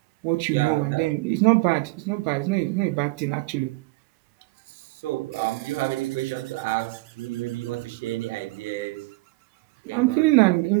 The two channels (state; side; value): quieter; left; 22.5 dB